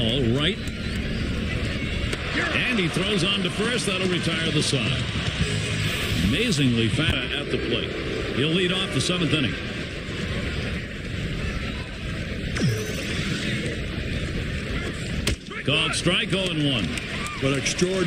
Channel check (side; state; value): both; identical; correlation 1.00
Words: right. And he throws on to first. That'll retire the side. Amazingly fast at the plate. He'll lead off the 7th inning. Called strike, 0-1. But an